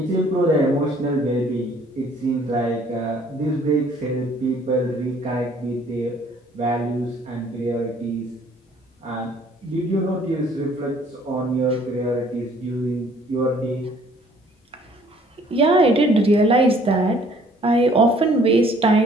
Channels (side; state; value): both; normal; correlation 0.58